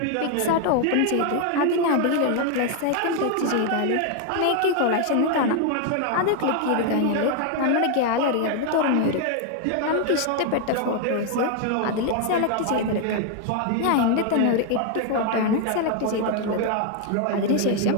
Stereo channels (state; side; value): different; both; correlation 0.01